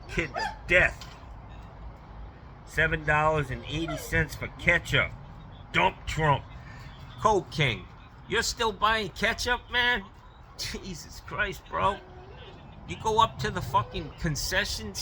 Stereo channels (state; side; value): identical; both; correlation 1.00